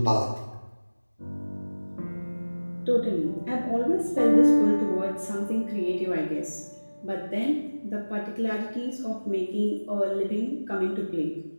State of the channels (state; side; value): inverted; both; correlation -1.00